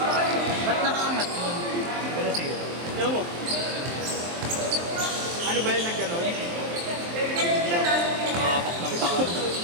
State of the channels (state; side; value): late; left; 23 ms